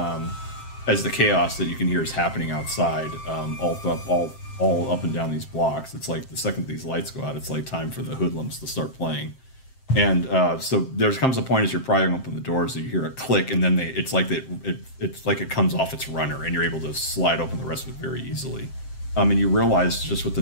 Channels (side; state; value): right; late; 7.6 ms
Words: as the chaos that you can hear is happening outside, all up and down these blocks, it's like the second these lights go out, it's like time for the hoodlums to start playing. And so there comes a point as you're prying open the doors that you hear a click, and then it's like it comes off its runner, and you're able to slide open the rest of it very easily. And you realize just with the